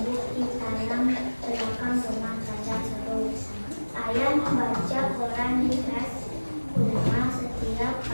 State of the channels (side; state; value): both; inverted; correlation -1.00